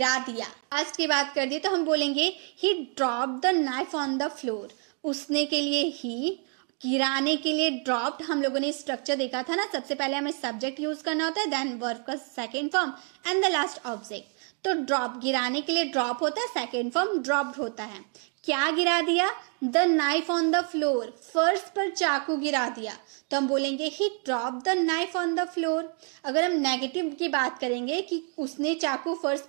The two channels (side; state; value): left; quieter; 39.0 dB